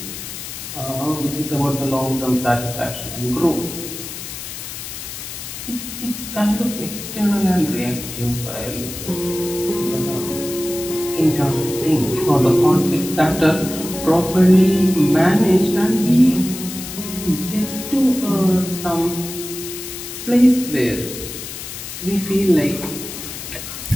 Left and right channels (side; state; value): left; noise; hiss, 9 dB below the sound